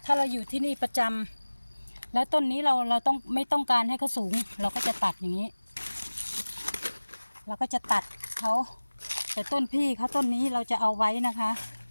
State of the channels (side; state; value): both; inverted; correlation -1.00